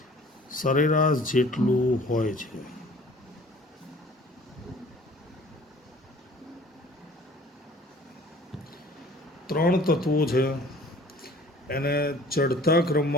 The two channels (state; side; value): normal; both; correlation 0.50